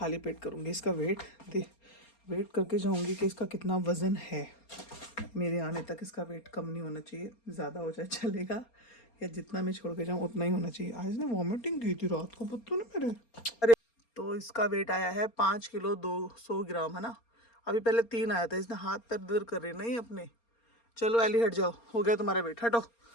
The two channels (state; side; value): late; right; 4.3 ms